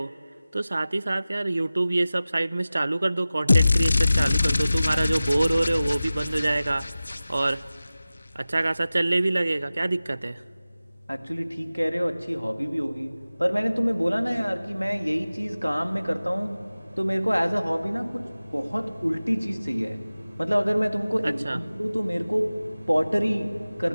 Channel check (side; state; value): both; inverted; correlation -0.97